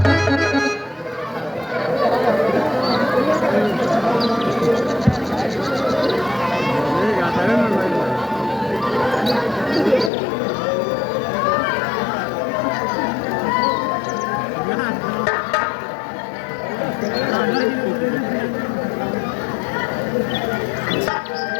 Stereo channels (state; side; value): drops out; right; at 10.1 s